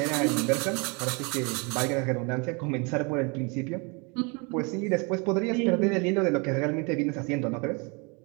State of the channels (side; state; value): left; quieter; 31.3 dB